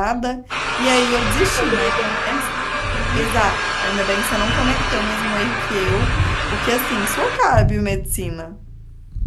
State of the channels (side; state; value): both; identical; correlation 1.00